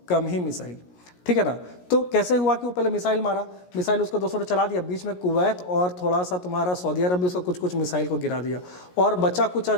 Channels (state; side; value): late; right; 17 ms